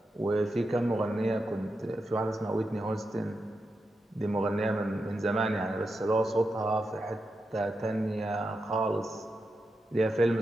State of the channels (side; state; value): both; normal; correlation 0.87